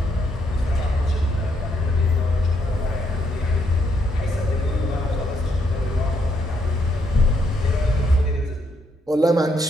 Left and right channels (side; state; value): both; normal; correlation 0.75